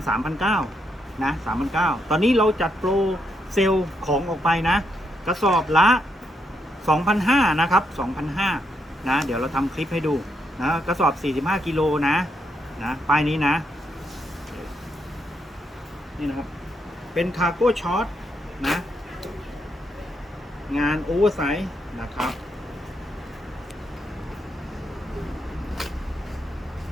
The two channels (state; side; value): normal; both; correlation 0.79